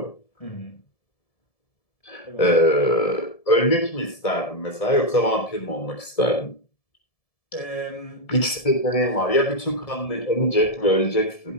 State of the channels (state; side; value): late; right; 1.7 ms